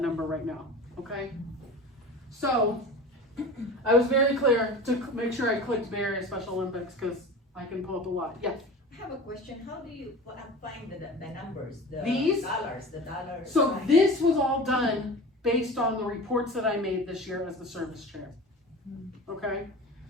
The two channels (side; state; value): both; normal; correlation 0.35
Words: right now, okay? So, I was very clear to make sure I clicked various Special Olympics, because I can pull up a lot, yes. I have a question. How do you find the numbers, the These? the dollars? So this was all done based on the reports that I made this year as the service chair, okay?